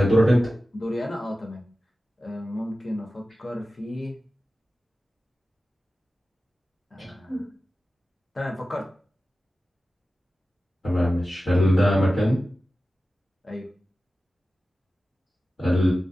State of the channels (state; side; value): normal; both; correlation 0.94